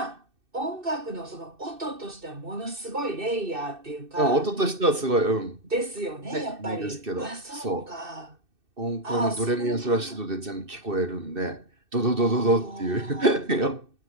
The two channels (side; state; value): left; late; 2.6 ms